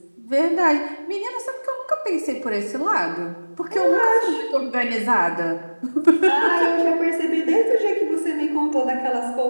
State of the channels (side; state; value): both; inverted; correlation -1.00